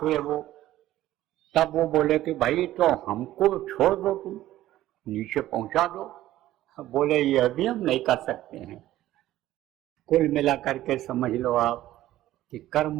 हुए वो, तब वो बोले कि भाई तो हमको छोड़ दो, तुम नीचे पहुंचा दो। बोले ये भी हम नहीं कर सकते हैं। कुल मिला करके समझ लो आप कि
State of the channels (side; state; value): left; quieter; 14.5 dB